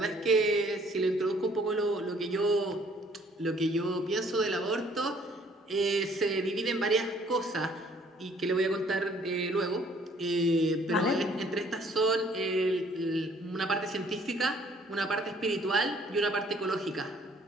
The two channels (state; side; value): normal; both; correlation 0.60